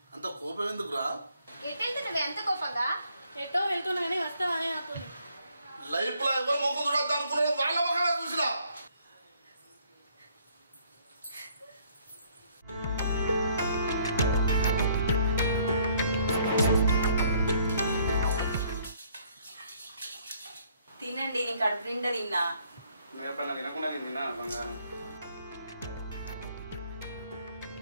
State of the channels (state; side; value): inverted; both; correlation -0.65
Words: అంత కోపం ఎందుకురా? ఎట్టెళ్తున్నావు ఎంత కోపంగా? ఎటో వెళ్తున్నా కానీ వస్తావనే అవుతుంది. లైఫ్ లో ఎవరు మొక్క చూడద్దు అనుకున్నారో వాళ్ళ మొక్కగా చూసినా. తినండి, నీ కడుపు నిండా తిన్నా. నువ్వు ఎప్పుడైనా తినకుండా నేను తిన్నా బంగారం.